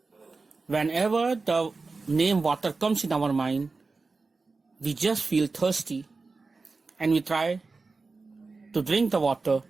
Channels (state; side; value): quieter; left; 4.0 dB